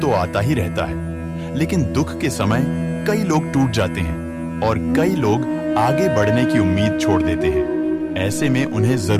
आता ही रहता है, लेकिन दुख के समय कई लोग टूट जाते हैं और कई लोग आगे बढ़ने की उम्मीद छोड़ देते हैं। ऐसे में उन्हें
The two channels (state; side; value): identical; both; correlation 1.00